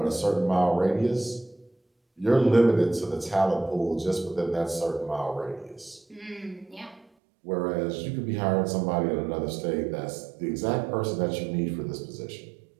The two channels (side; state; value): left; drops out; at 7.1 s